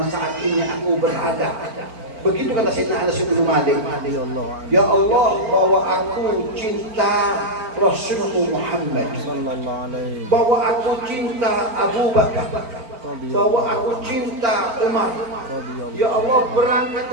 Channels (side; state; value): left; late; 4.4 ms